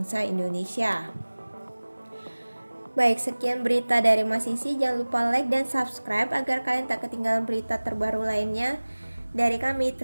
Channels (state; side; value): inverted; both; correlation -1.00